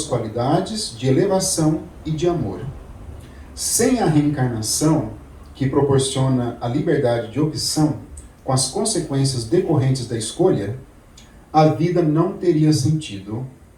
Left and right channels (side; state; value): both; identical; correlation 1.00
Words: qualidades de elevação e de amor. Sem a reencarnação, que proporciona a liberdade de opção, com as consequências decorrentes da escolha, a vida não teria sentido